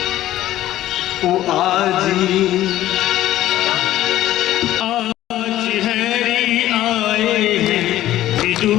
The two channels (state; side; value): quieter; right; 14.0 dB